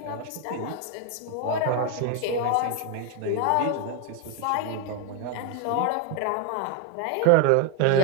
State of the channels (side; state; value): both; different; correlation 0.01